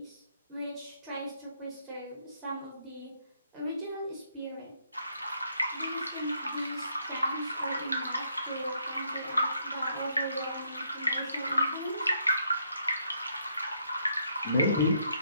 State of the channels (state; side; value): inverted; both; correlation -0.72